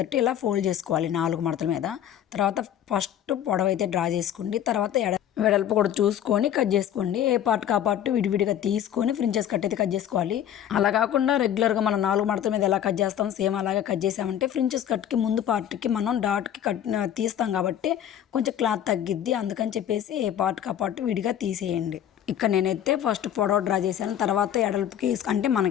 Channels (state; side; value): quieter; right; 10.4 dB